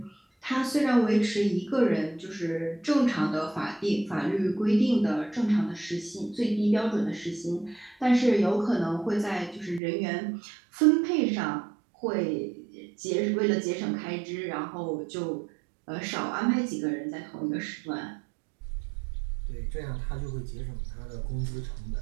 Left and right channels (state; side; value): drops out; left; at 9.8 s